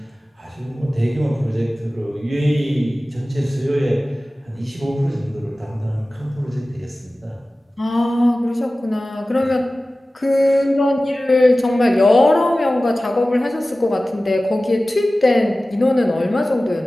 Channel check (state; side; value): normal; both; correlation 0.96